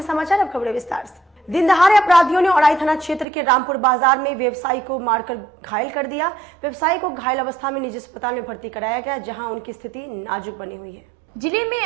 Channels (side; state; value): left; drops out; at 3.2 s